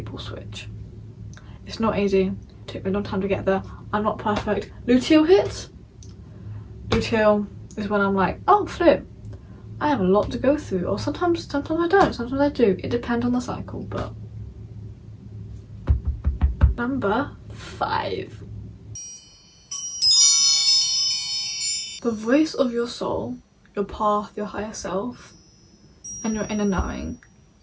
switch. It's not easy. It took me a long time to get there. I'm not perfect. Luteal hits. Luteal is when I'm like, oh flip, I have a lot to go through. Or sometimes I don't, sometimes I do. It depends on the cycle, but. Number 5. The voice of your soul, your path, your higher self, and your inner knowing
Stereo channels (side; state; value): both; identical; correlation 1.00